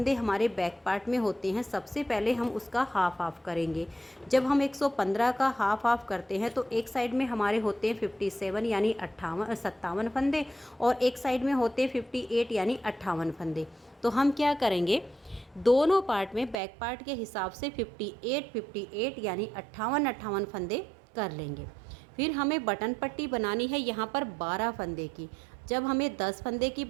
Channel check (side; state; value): left; drops out; at 16.6 s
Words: हमारे बैक पार्ट में होते हैं, सबसे पहले हम उसका हाफ हाफ करेंगे। जब हम 115 का हाफ हाफ करते हैं तो एक साइड में हमारे होते हैं 57 यानी 57 फंदे, और एक साइड में होते हैं 58 यानी 58 फंदे। तो हम क्या करेंगे, दोनों पार्ट में बैक पार्ट के हिसाब से 58 यानी 58 फंदे कर लेंगे। फिर हमें बटन पट्टी बनानी है यहाँ पर 12 फंदे की। जब हमें 10 फंदे की